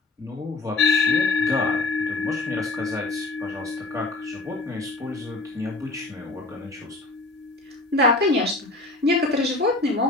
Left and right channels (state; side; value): quieter; right; 3.1 dB